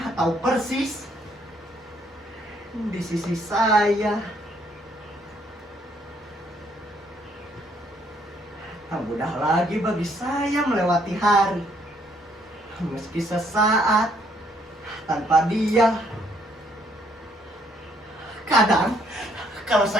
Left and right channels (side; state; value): both; normal; correlation 0.68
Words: atau persis di sisi saya, tak mudah lagi bagi saya melewati hari, meski sesaat tanpa dia. Kadang kalau